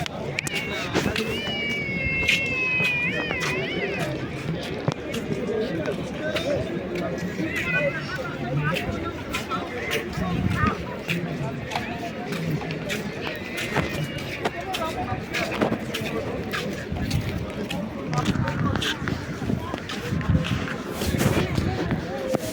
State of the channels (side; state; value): both; identical; correlation 1.00